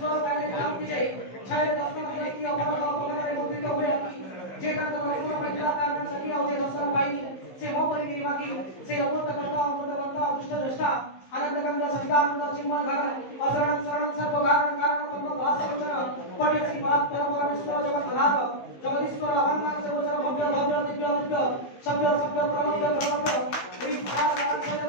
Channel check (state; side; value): late; right; 15 ms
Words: काले क्रांति जाई छाय दर्शन की अमर अपने मुद्रित हुए जे का कर्म महिला कारण सकी और दर्शन पाई से मो परिगिरी बाकी से अमृत करता अदृष्ट दृष्टा आनंद गंगा सवितानंद चिन्मय घर अशरण शरण सर्व कारण कारण पद्म भासवचन पट्यसी बात परम परमेश्वर जगत आधार जगदीश्वर अहंकार से गोचर भव्य भव्य दिव्य दिव्य सभ्य सभ्य प्रमव्य प्रमव्य विभाग